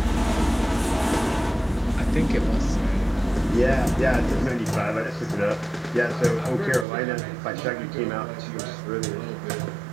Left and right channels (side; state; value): left; drops out; at 6.9 s